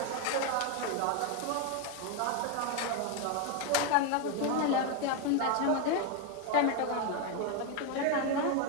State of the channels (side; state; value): both; different; correlation 0.01